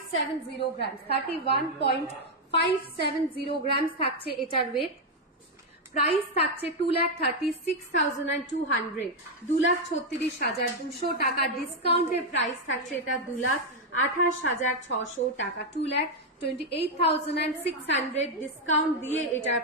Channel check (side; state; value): both; normal; correlation 0.02